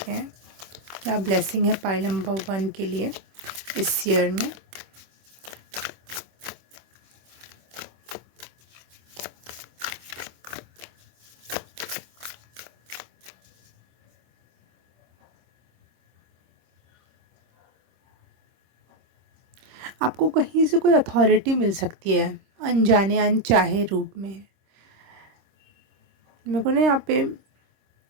हैं क्या ब्लेसिंग है पाइल नंबर 1 के लिए इस ईयर में। आपको कहीं से कोई अथॉरिटी मिल सकती है अनजाने अनचाहे रूप में। मेरे को ना यहाँ पे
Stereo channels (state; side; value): late; left; 26 ms